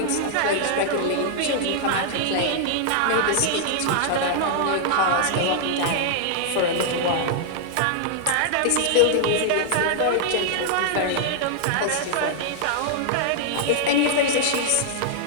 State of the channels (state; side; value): different; both; correlation -0.01